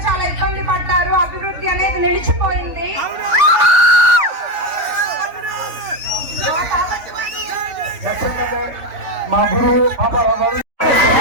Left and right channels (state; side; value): late; left; 3.5 ms